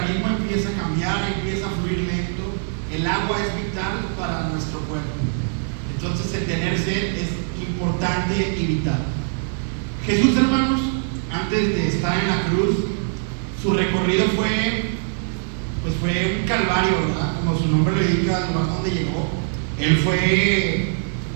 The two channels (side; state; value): left; silent; digital silence